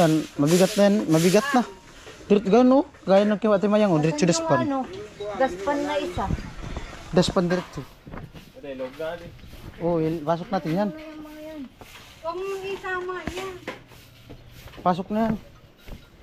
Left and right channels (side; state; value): both; identical; correlation 1.00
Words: mabigat na yan, mabigat na. Diretso gano, gaya ng kay Ate Mayang, diretso daspan. Ano, daspan na isa. Daspan diretso. Ate, log gali. Oh, pasok natin yan. Huwag mong isama yan. Pasok na yan.